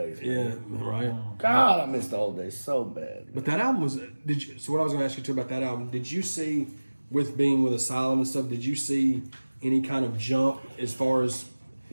Man. Yeah, right. God, I miss the old days so bad. But that album was. Did you? So what I was going to ask you too about that album? Did you see, with being with Asylum and stuff? Did you see any kind of jump as far as?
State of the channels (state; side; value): inverted; both; correlation -1.00